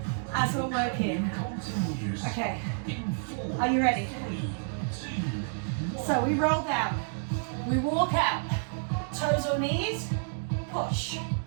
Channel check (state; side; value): silent; left; digital silence